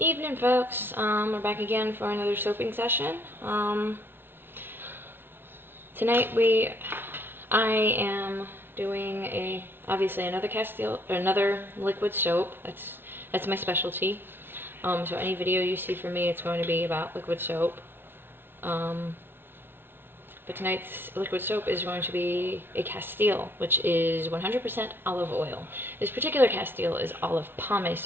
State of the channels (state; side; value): late; left; 0.11 ms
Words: folks. We're back again for another soaping session. Tonight I am doing obviously another Castile, another liquid soap. That's my specialty. So any video you see from me, it's going to be about liquid soap. But tonight's liquid soap is going to be a Castile, which is 100% olive oil. This particular Castile is olive